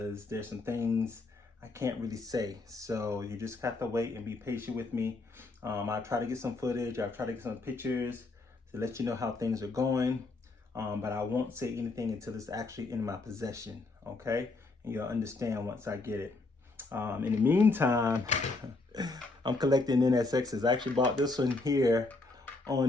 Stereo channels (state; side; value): quieter; right; 3.4 dB